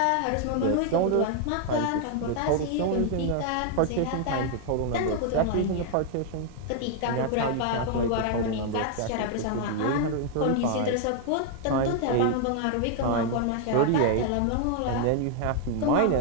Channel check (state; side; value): different; both; correlation 0.00